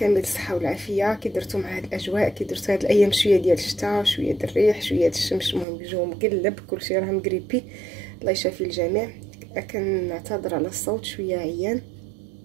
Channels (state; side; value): drops out; left; at 5.7 s